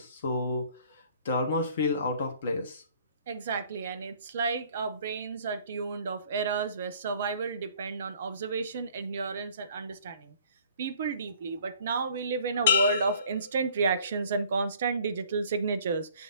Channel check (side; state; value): both; inverted; correlation -0.55